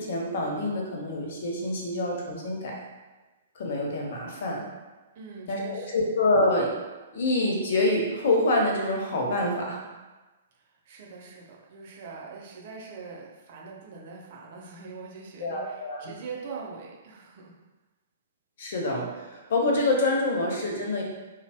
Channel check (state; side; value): inverted; both; correlation -0.43